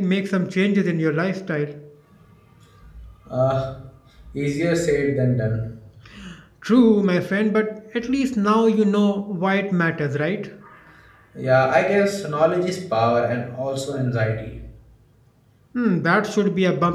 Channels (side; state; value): both; identical; correlation 1.00